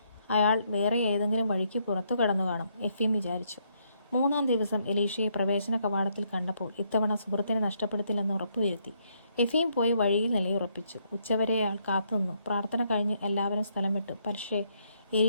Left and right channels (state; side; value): inverted; both; correlation -0.74